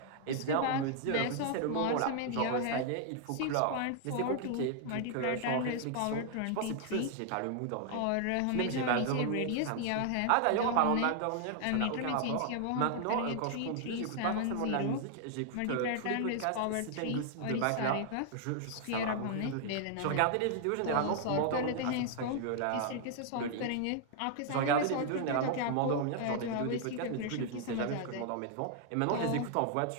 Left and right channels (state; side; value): different; both; correlation 0.00